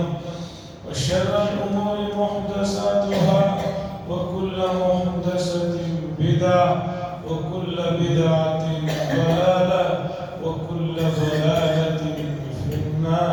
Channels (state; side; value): identical; both; correlation 1.00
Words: وشر الأمور محدثاتها وكل محدثة بدعة وكل بدعة ضلالة وكل ضلالة في